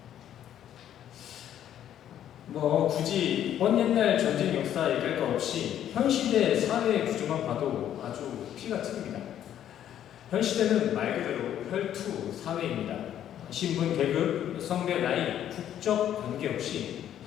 굳이 먼 옛날 전쟁 역사 얘기할 것 없이 현 시대 사회 구조만 봐도 아주 피가 튀깁니다. 현 시대는 말 그대로 혈투 사회입니다. 신분, 계급, 성별, 나이, 국적 관계없이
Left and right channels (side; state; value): right; quieter; 10.7 dB